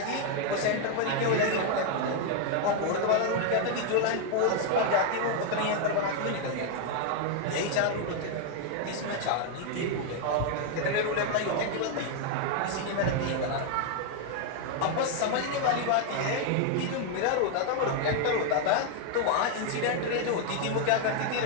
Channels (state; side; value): different; both; correlation 0.00